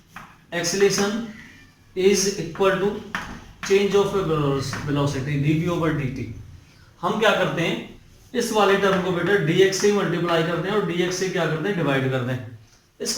acceleration is equal to change of velocity dv/dt। हम क्या करते हैं, इस वाले टर्म को बेटा dx से मल्टीप्लाई करते हैं और dx से क्या करते हैं, डिवाइड करते हैं,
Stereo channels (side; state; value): both; identical; correlation 1.00